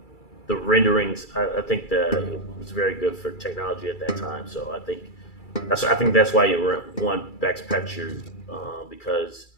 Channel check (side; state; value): right; late; 2.3 ms